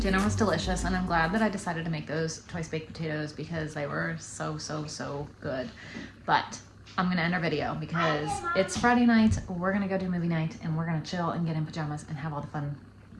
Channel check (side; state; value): both; identical; correlation 1.00